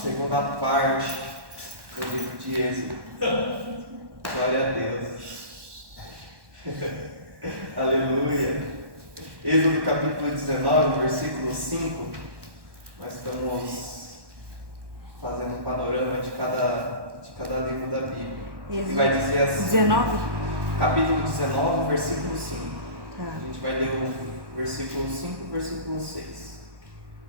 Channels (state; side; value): late; left; 1.1 ms